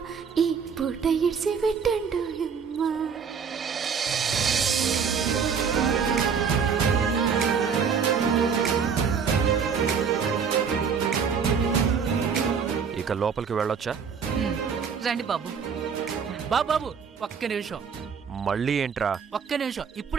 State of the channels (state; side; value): quieter; left; 6.4 dB